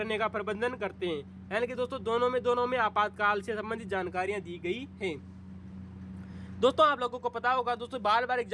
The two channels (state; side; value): identical; both; correlation 1.00